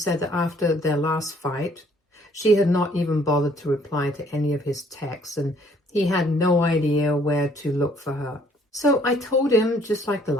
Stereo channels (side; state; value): both; normal; correlation 0.62